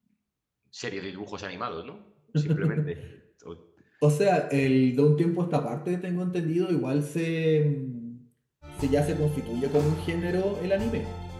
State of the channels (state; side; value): identical; both; correlation 1.00